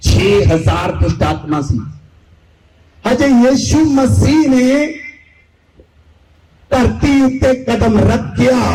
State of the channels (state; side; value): identical; both; correlation 1.00